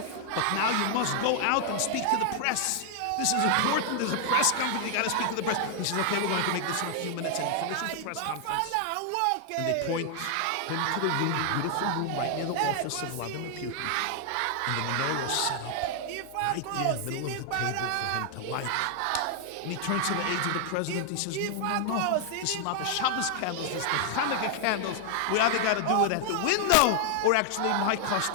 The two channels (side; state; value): both; different; correlation 0.00